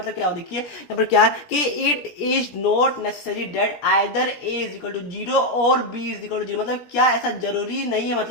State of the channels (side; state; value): right; late; 17 ms